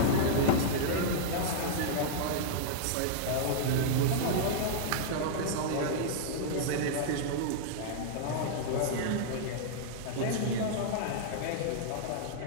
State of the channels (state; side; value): different; both; correlation -0.02